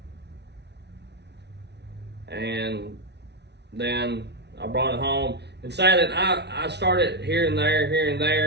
And then I brought it home and sat it. I started here and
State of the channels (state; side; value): late; left; 0.50 ms